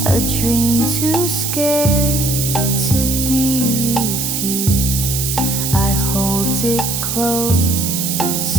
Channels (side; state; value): right; noise; hiss, 2 dB below the sound